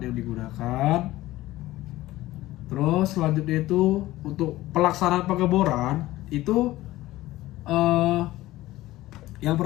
yang digunakan. Terus selanjutnya itu untuk pelaksanaan pengeboran itu yang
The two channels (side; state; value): right; quieter; 16.8 dB